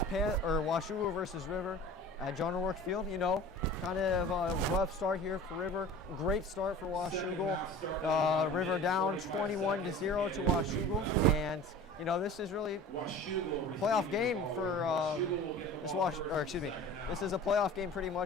Washougal versus River at John O'Rourke Field. You know, kind of a rough start here for River. Great start for Washougal. River down 21-0 to Washougal, and you know this is really a playoff game for This is a playoff game pretty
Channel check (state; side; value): normal; both; correlation 0.40